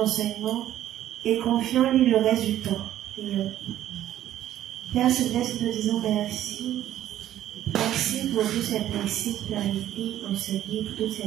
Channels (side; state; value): left; quieter; 12.4 dB